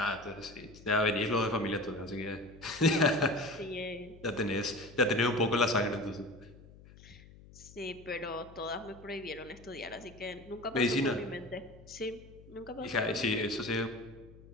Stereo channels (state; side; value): noise; left; hum, 21 dB below the sound